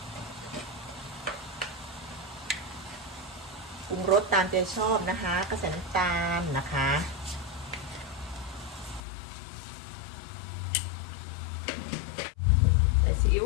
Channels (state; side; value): drops out; right; at 9.0 s